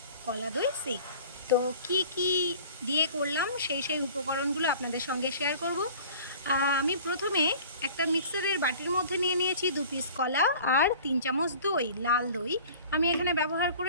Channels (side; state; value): both; inverted; correlation -0.45